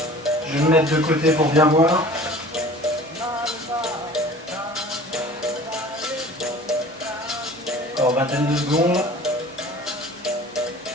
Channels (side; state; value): both; normal; correlation 0.45